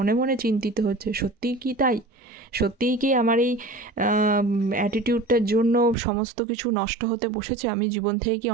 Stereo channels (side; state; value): left; drops out; at 6.0 s